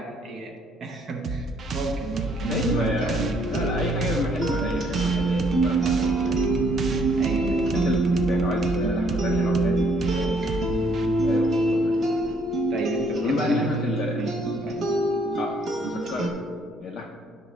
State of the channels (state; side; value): normal; both; correlation 0.66